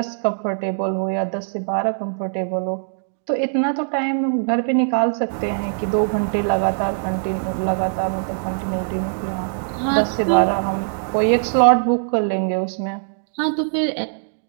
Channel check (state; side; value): silent; left; digital silence